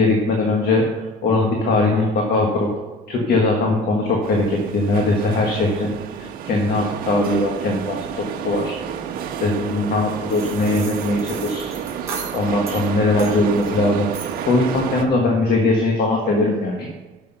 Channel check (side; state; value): both; normal; correlation 0.45